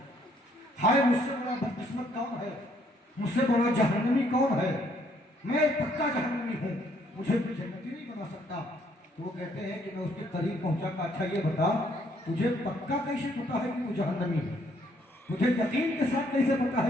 हाय मुझसे बड़ा बदकिस्मत कौन है, मुझसे बड़ा जहन्नमी कौन है, मैं पक्का जहन्नमी हूँ, मुझे भी जन्नती नहीं बना सकता। तो वो कहते हैं कि मैं उसके करीब पहुंचा का, अच्छा ये बता तुझे पक्का कैसे पता है कि तू जहन्नमी है, तुझे यकीन के साथ कैसे पता है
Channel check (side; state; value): both; normal; correlation 0.67